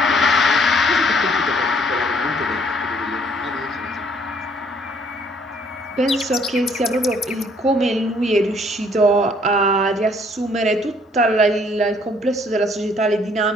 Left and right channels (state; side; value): normal; both; correlation 0.62